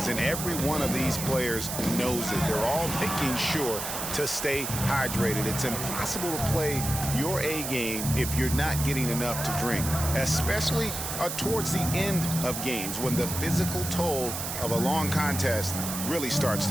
And every one of these players knows it. They're all making sure to stay hydrated. It's impossible to play your A game if you're not getting enough to drink, especially towards the end of games when the physical toll of a long contest really starts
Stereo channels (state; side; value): noise; right; hiss, 5 dB below the sound